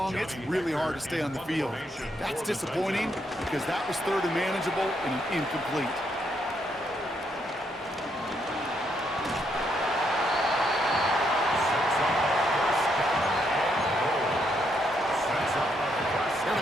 it's really hard to stay on the field. That's disappointing because that was 3rd and manageable and an incomplete. Now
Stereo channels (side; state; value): both; normal; correlation 0.76